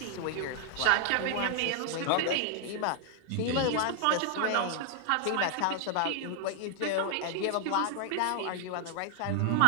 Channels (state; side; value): different; both; correlation 0.00